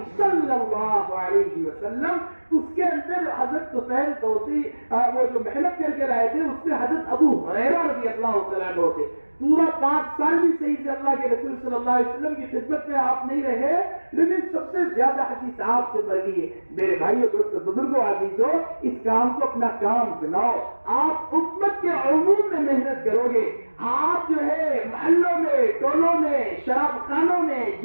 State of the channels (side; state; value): both; inverted; correlation -1.00